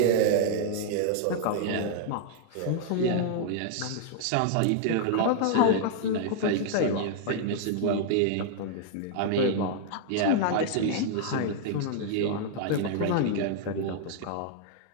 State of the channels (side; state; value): both; different; correlation -0.01